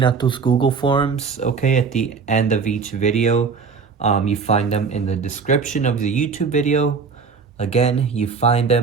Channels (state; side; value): quieter; left; 5.3 dB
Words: out those Google Forms, okay, at the end of each video. You find them in the description of the YouTube video. Again, you find